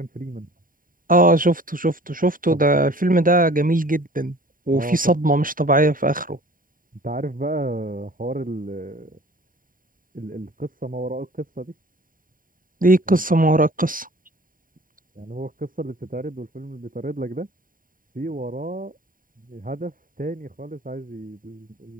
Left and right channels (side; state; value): left; late; 0.40 ms